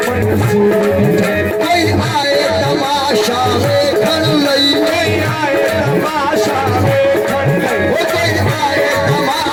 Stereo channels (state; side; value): identical; both; correlation 1.00